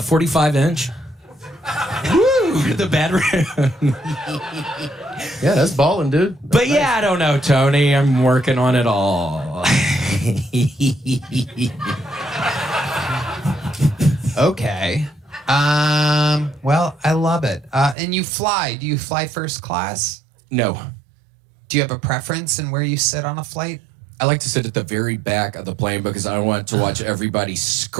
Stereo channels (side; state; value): left; drops out; at 17.9 s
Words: Woo! Ooh, the bedroom. Yeah, that's balling, dude. But yeah, I don't know, Tony. I'm working on it all. Okay. Well, I love it. And you fly. Do you fly first class? No. Do you have a preference in where you sit on a flight? I like to sit at the very back of the plane because I want to watch everybody